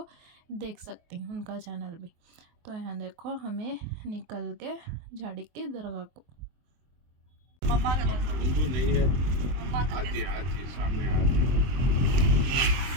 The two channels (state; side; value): late; left; 23 ms